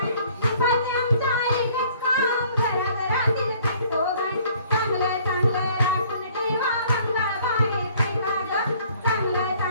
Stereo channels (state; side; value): inverted; both; correlation -0.58